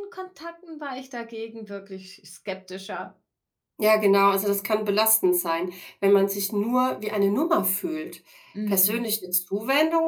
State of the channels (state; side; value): identical; both; correlation 1.00